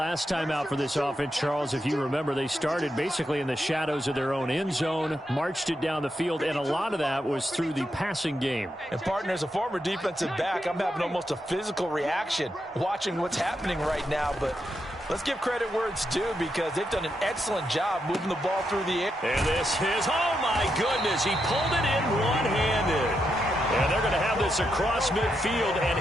time out for this offense, Charles. If you remember, they started basically in the shadows of their own end zone, marched it down the field, and a lot of that was through the passing game. And, partner, as a former defensive back, I'm having almost a physical reaction watching what's happening right now. But let's give credit where it's due because they've done an excellent job moving the ball through the air. And this is, oh, my goodness, he pulled it in one-handed. And they're going to have this across midfield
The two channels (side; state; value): both; normal; correlation 0.83